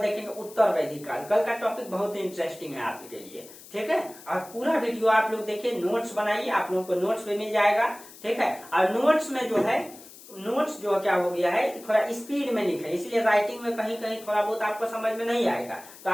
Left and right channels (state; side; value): noise; left; hiss, 19 dB below the sound